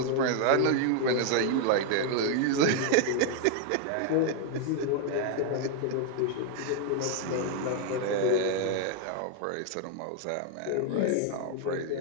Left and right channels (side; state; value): both; different; correlation 0.00